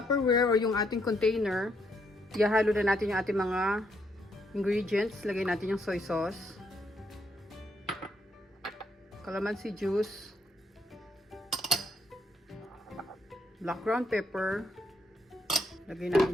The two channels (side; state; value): both; normal; correlation 0.74